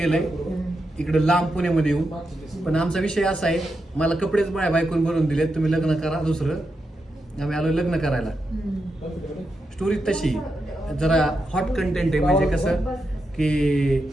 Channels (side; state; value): both; normal; correlation 0.86